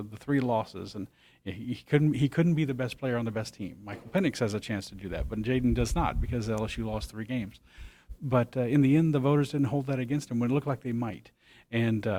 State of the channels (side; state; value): both; identical; correlation 1.00